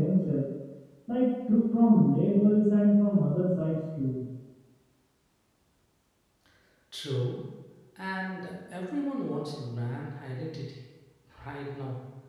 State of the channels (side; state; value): both; identical; correlation 1.00